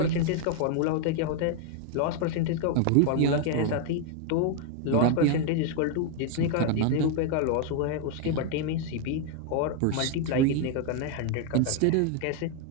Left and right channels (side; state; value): both; different; correlation 0.00